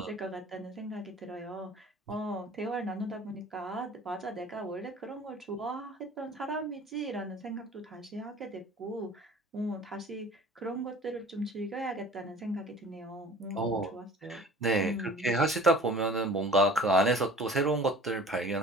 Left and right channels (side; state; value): both; normal; correlation 0.46